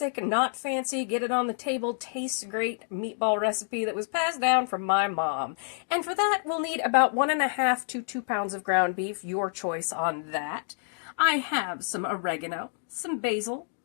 not fancy, get it on the table, tastes great meatball recipe that was passed down from my mom. And for that we'll need about 1.5 to 2 pounds of ground beef, your choice on that. I have some oregano, some basil,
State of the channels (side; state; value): right; silent; digital silence